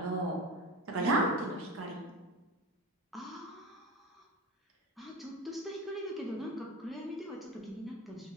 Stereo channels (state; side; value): normal; both; correlation 0.27